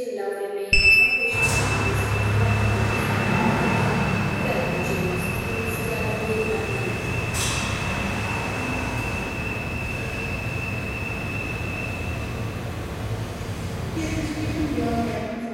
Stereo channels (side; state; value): both; identical; correlation 1.00